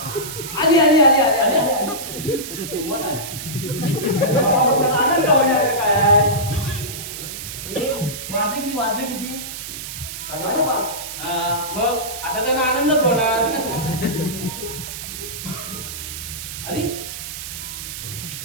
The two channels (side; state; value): right; noise; hiss, 8 dB below the sound